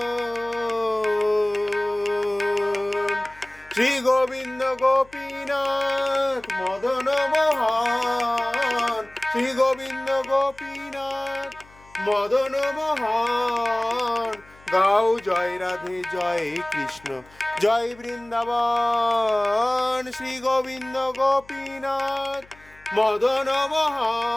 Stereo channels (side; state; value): left; noise; hum, 26 dB below the sound